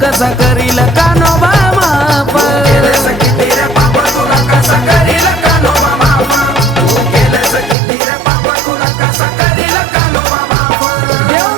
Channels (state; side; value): drops out; left; at 7.8 s